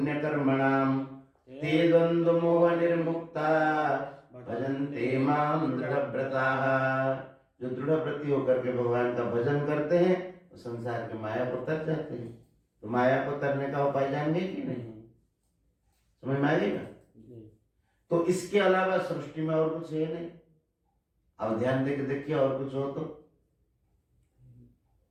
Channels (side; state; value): both; identical; correlation 1.00